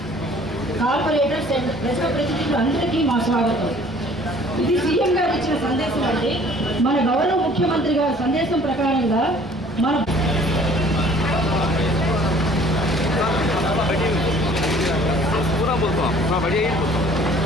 కార్పొరేటర్స్ అండ్ ప్రజాప్రతినిధులు అందరికీ మా స్వాగతం। ఇది సీఎం గారు ఇచ్చిన సందేశం అంటే మన గౌరవ ముఖ్యమంత్రి గారి సందేశం ప్రకారంగా మన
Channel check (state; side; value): normal; both; correlation 0.53